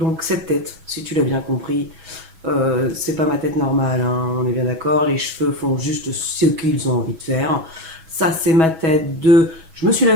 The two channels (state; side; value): late; left; 6.2 ms